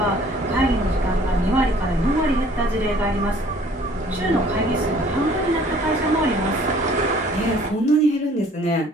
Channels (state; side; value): normal; both; correlation 0.55